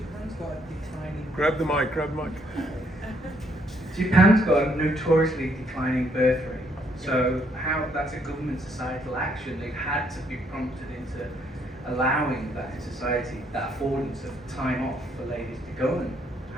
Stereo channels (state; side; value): normal; both; correlation 0.70